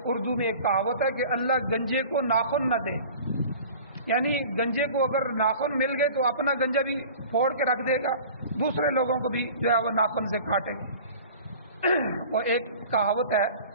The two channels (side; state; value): both; inverted; correlation -0.43